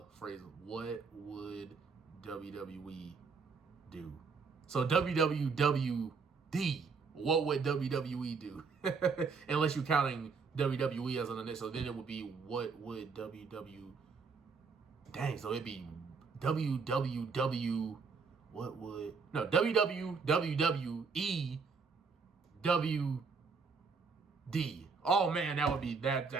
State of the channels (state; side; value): quieter; left; 5.0 dB